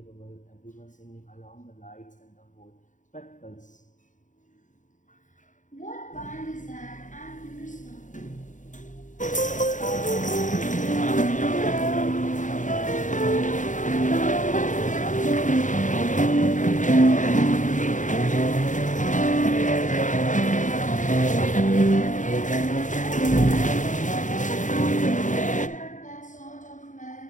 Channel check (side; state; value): right; late; 0.37 ms